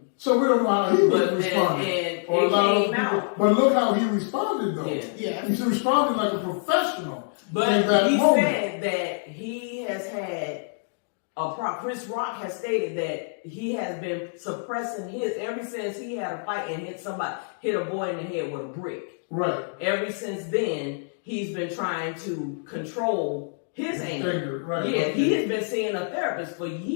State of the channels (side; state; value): right; silent; digital silence